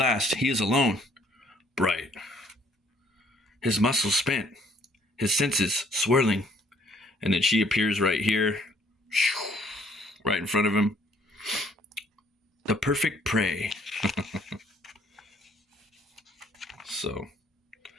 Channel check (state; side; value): normal; both; correlation 0.62